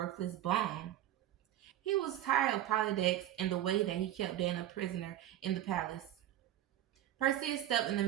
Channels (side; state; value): left; quieter; 12.5 dB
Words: bum. He was tired of Polydex and the way that he kept Dana a prisoner in the palace. Perseus stepped in the